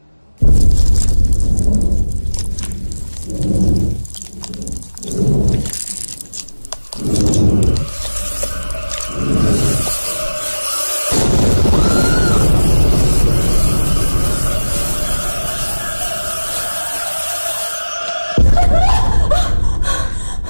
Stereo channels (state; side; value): inverted; both; correlation -1.00